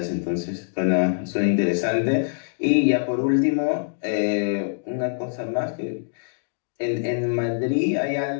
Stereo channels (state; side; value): silent; right; digital silence